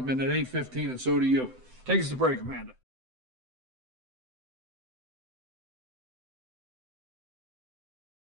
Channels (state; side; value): late; left; 7.8 ms